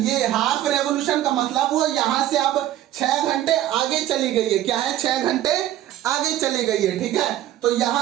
ये हाफ रेवोल्यूशन का मतलब वो यहां से अब 6 घंटे आगे चली गई है। क्या है? 6 घंटे आगे चली गई है, ठीक है। तो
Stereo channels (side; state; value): left; quieter; 13.0 dB